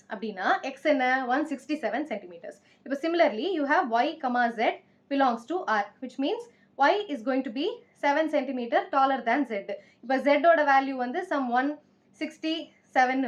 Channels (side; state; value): both; identical; correlation 1.00